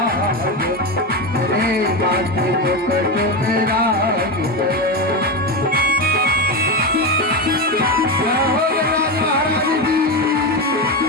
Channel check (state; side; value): normal; both; correlation 0.15